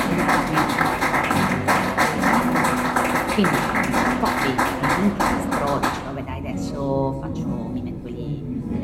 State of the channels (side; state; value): both; identical; correlation 1.00